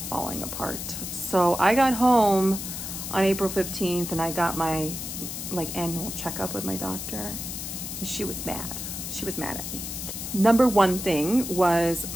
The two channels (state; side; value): noise; left; hiss, 6 dB below the sound